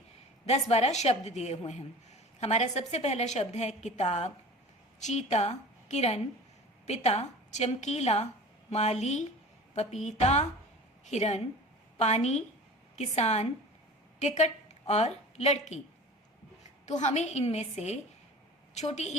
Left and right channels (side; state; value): both; normal; correlation 0.38